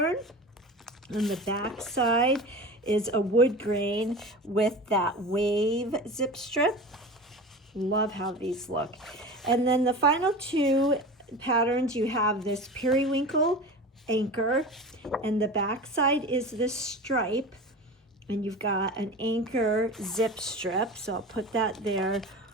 on the back side is a wood grain with that wave zip strip. Love how these look. And then the final 2 patterns, you have this periwinkle anchor, and the back side is this stripe, and you've got an anchor zip strip. So I'll put that there,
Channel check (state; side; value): normal; both; correlation 0.32